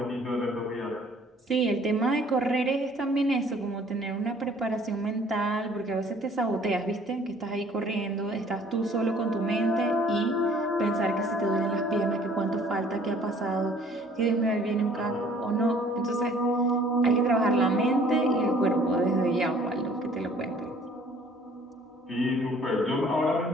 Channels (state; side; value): normal; both; correlation 0.56